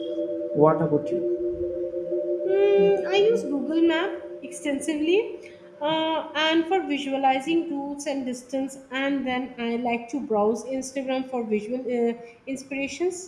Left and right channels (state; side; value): identical; both; correlation 1.00